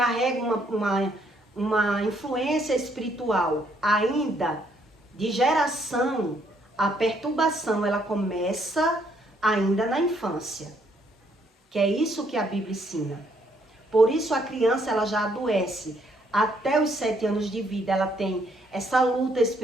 uma influência espiritual ainda de geração, a perturbação ela começa ainda na infância. Que é isso que a Bíblia ensina. Por isso a criança ela já adoece. Até os 7 anos de vida ela tem essa luta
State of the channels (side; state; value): both; normal; correlation 0.69